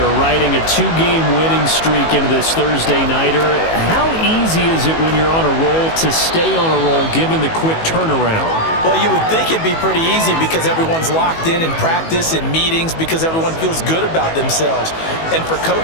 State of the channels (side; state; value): right; late; 18 ms